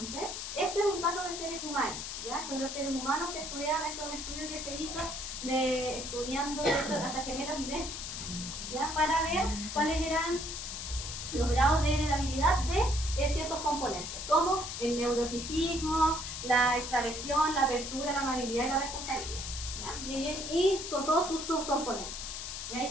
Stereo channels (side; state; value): left; noise; hiss, 6 dB below the sound